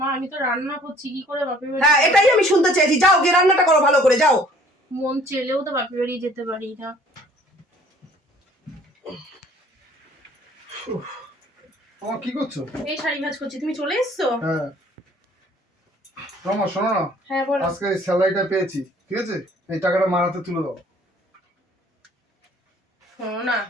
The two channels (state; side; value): normal; both; correlation 0.55